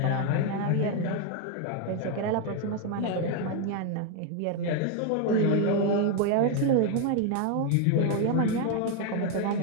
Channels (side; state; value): both; different; correlation 0.01